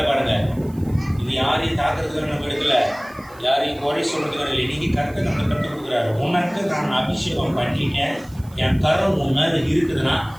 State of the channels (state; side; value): noise; right; hiss, 26 dB below the sound